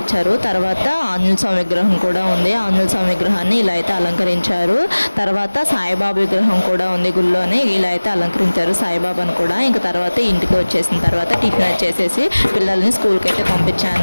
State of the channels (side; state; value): both; inverted; correlation -1.00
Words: తర్వాత ఆంజనేయ స్వామి విగ్రహం కూడా ఉంది. ఆంజనేయ స్వామి విగ్రహాన్ని ఇలా అయితే అలంకరించారు. తర్వాత సాయిబాబా విగ్రహం కూడా ఉంది గుళ్ళోనే, ఇలా అయితే అలంకరించారు సాయిబాబాను కూడా. ఇంకా తర్వాత ఇంటికి వచ్చేసిన తర్వాత టిఫిన్ వచ్చేసేసి పిల్లల్ని స్కూల్కి అయితే